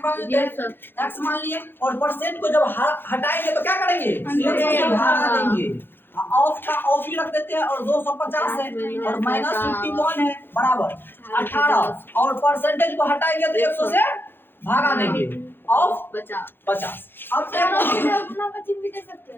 मान लेते हैं, x मान लिए, और परसेंट को जब हटाएंगे तो क्या करेंगे, 100 से भागा देंगे, ऑफ का ऑफ ही रख देते हैं, और 250 है और माइनस 51 है बराबर 18, और परसेंटेज को हटाएंगे तो 100 से भागा देंगे, ऑफ 50। अब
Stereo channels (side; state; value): right; late; 0.10 ms